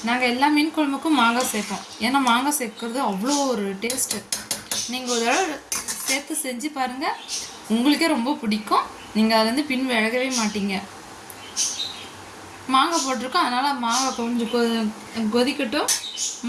நாங்கள் எல்லா மீன் குழம்புக்கும் மாங்காய் சேர்ப்போம். ஏன்னா மாங்காய் சேர்க்கறது அவ்வளோ ஒரு டேஸ்ட்டு. நீங்கள் ஒரு தடவை சேர்த்து செஞ்சு பாருங்கள், உங்களுக்கே ரொம்ப பிடிக்கும். நீங்கள் அதுலேருந்து பின் விலகவே மாட்டீங்க. மாங்காய் போட்டிருக்கோம், அதனால் மாங்காய் கொஞ்சம் கொதிக்கட்டும்.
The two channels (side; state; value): both; identical; correlation 1.00